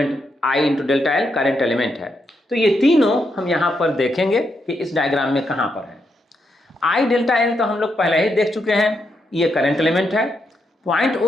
I into delta L current element है। तो ये तीनों हम यहाँ पर देखेंगे कि इस डायग्राम में कहाँ पर है। I डेल्टा एल तो हम लोग पहले ही देख चुके हैं, ये करंट एलिमेंट है। पॉइंट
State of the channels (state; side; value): normal; both; correlation 0.81